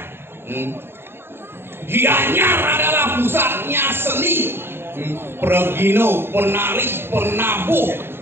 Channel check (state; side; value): late; left; 0.11 ms